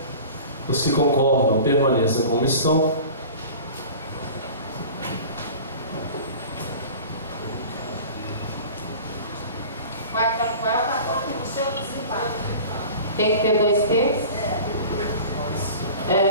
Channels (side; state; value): both; inverted; correlation -0.39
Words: Os que concordam, permaneçam como estão. Tem que ter 2 terços?